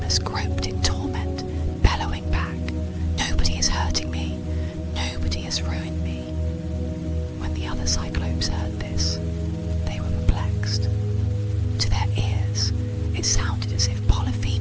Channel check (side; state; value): both; identical; correlation 1.00